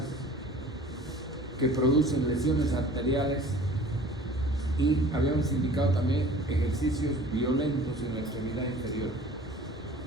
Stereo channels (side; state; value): both; normal; correlation 0.45